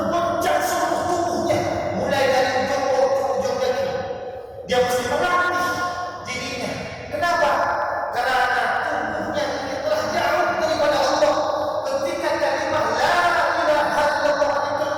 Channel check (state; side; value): identical; both; correlation 1.00